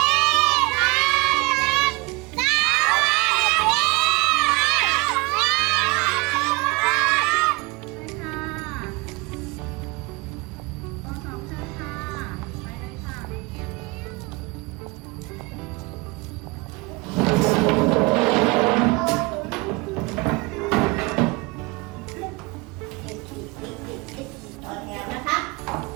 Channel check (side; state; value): left; quieter; 25.3 dB